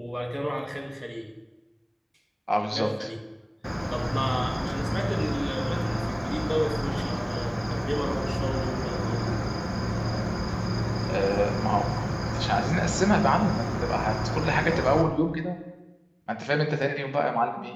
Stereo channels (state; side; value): identical; both; correlation 1.00